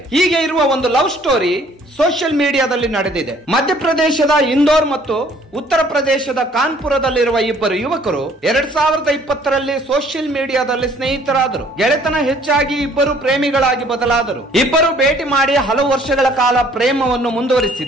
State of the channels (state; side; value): normal; both; correlation 0.59